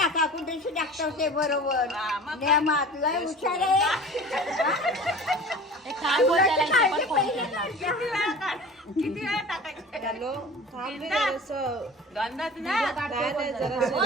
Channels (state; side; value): normal; both; correlation 0.39